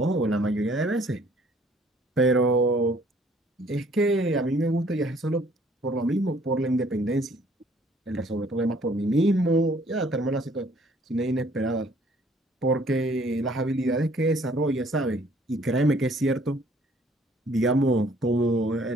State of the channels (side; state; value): both; normal; correlation 0.60